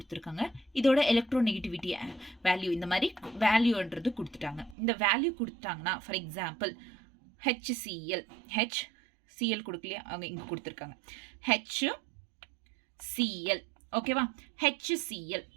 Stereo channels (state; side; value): drops out; left; at 4.8 s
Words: இதோட எலக்ட்ரோநெகட்டிவிட்டி வேல்யூ இந்த மாதிரி வேல்யூன்றது கொடுத்துட்டாங்க. இந்த வேல்யூ கொடுத்துட்டாங்கன்னா ஃபார் எக்ஸாம்பிள் HCl HCl கொடுக்கலையா, அவங்க இங்கே கொடுத்துருக்காங்க HCl. ஓகேவா, HCl.